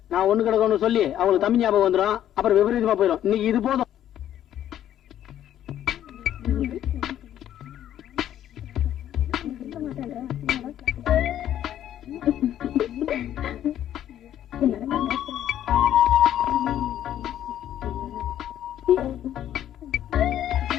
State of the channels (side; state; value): right; quieter; 11.3 dB